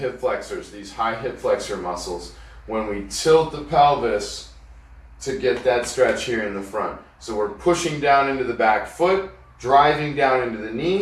flexors, these high hip flexor muscles, when we tilt the pelvis to get that stretch here in the front. So we're pushing down into the back foot, driving down into the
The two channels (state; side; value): identical; both; correlation 1.00